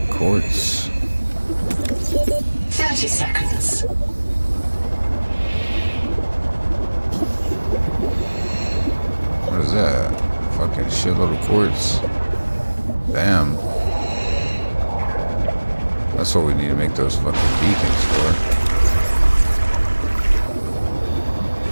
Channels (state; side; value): inverted; both; correlation -1.00